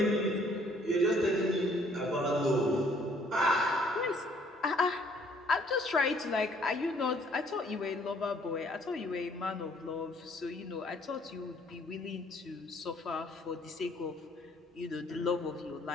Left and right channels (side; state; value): both; normal; correlation 0.62